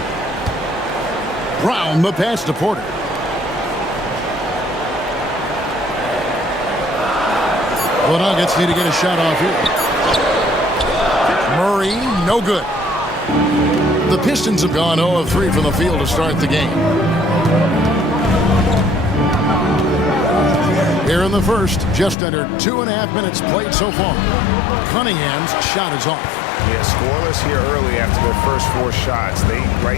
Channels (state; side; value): drops out; right; at 22.2 s